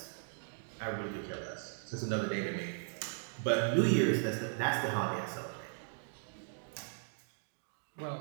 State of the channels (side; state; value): left; silent; digital silence